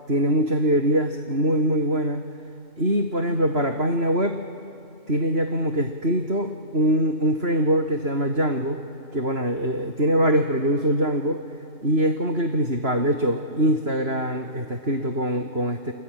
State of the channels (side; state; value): left; late; 3.0 ms